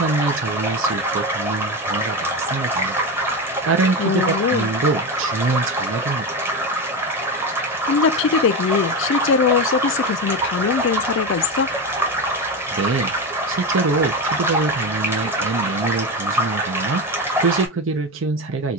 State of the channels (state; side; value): normal; both; correlation 0.18